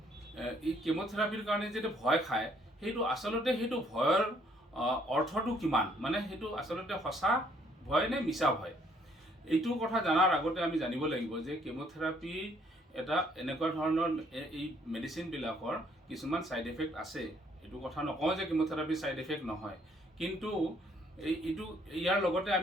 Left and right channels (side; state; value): both; normal; correlation 0.65